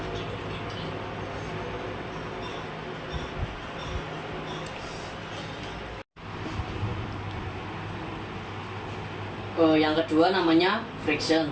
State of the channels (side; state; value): both; identical; correlation 1.00